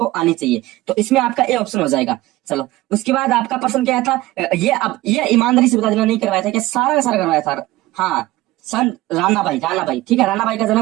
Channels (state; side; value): quieter; left; 17.8 dB